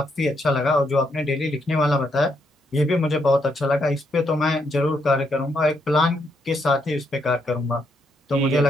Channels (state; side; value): normal; both; correlation 0.77